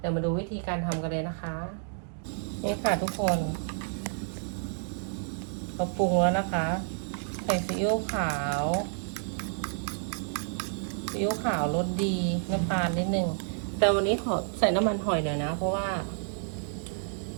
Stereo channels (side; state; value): left; silent; digital silence